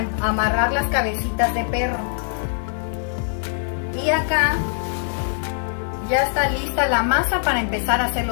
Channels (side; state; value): right; silent; digital silence